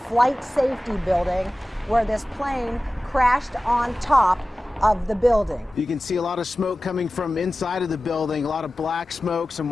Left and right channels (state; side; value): normal; both; correlation 0.96